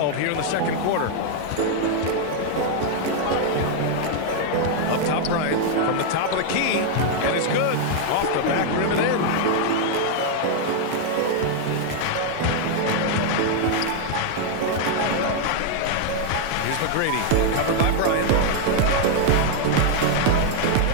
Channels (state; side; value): different; both; correlation 0.00